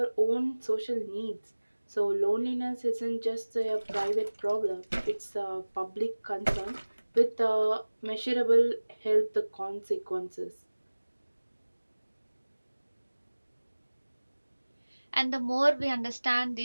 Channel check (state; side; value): inverted; both; correlation -1.00